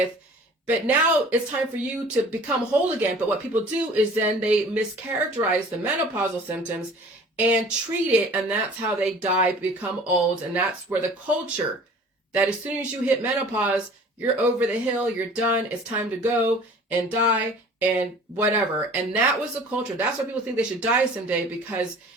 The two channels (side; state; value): both; normal; correlation 0.47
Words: But now it's time for you to become whole again. But what people do is then they mischaracterize the menopausal symptoms and treat it, and that's how they die, become old. And that's where the culture that as soon as you hit menopause, you're over the hill, you're done, it's time to go and die and whatever. And that was the culture. That's why people think they should die someday, because